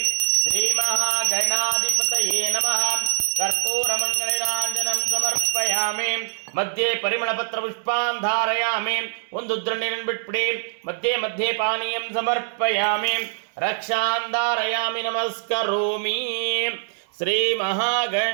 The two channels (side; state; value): left; silent; digital silence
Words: ಶ್ರೀ ಮಹಾಗಣಾಧಿಪತಯೇ ನಮಃ. ಕರ್ಪೂರಮಂಗಳೀರಾಂಜನಂ ಸಮರ್ಪಯಾಮಿ. ಮಧ್ಯೆ ಪರಿಮಳಪತ್ರ ಪುಷ್ಪಾನ್ ಧಾರಯಾಮಿ. ಒಂದು ಉದ್ಧರಣ ನೀರನ್ನು ಬಿಟ್ಬಿಡಿ. ಮಧ್ಯೆ ಮಧ್ಯೆ ಪಾನೀಯಂ ಸಮರ್ಪಯಾಮಿ. ರಕ್ಷಾನ್ ಧಾರಯಾಮಿ. ನಮಸ್ಕರೋಮಿ. ಶ್ರೀ